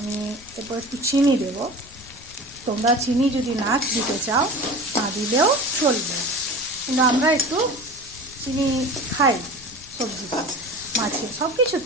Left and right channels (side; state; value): left; noise; rumble, 22 dB below the sound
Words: এরপর একটু চিনি দেব। তোমরা চিনি যদি না দিতে চাও না দিলেও চলবে, কিন্তু আমরা একটু চিনি খাই সবজিতে, মাছে, সব